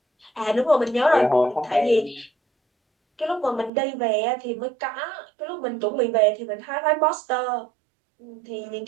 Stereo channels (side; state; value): left; drops out; at 3.7 s